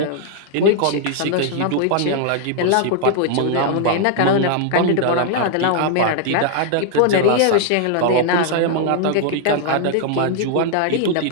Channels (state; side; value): different; both; correlation 0.00